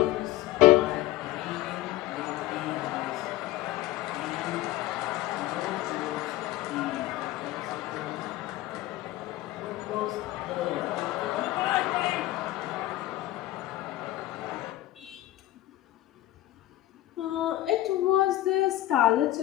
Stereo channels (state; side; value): quieter; right; 15.4 dB